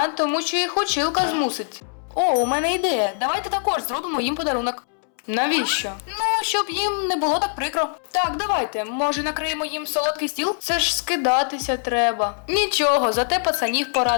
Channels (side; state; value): right; silent; 64 dB below the other